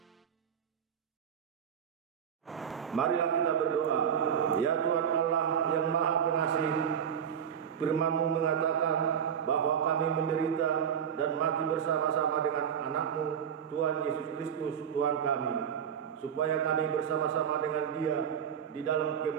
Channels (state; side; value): quieter; left; 8.2 dB